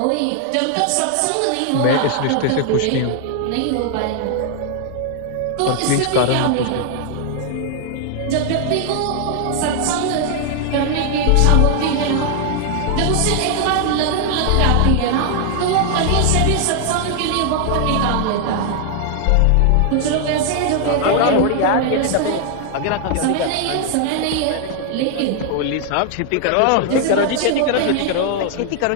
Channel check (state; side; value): different; both; correlation 0.00